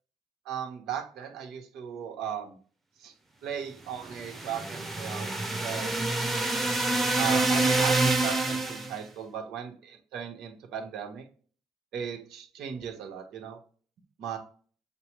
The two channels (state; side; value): quieter; left; 3.1 dB